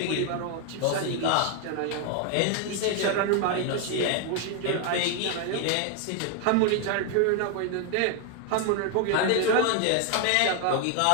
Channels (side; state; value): both; different; correlation 0.01